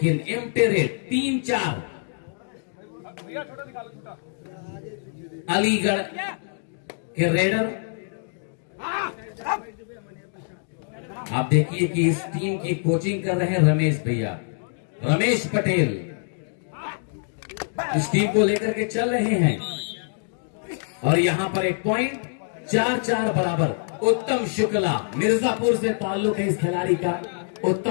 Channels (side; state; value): right; silent; 62 dB below the other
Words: एम्प्टी रेट 3-4 अलीगढ़ के रेडर। आप देखिए कि इस टीम की कोचिंग कर रहे हैं रमेश भैया, रमेश पटेल इस टीम को लेकर के चल रहे हैं। और यहां पर एक पॉइंट 4-4 बराबर। उत्तम शुक्ला मिर्जापुर से ताल्लुक है इस खिलाड़ी का,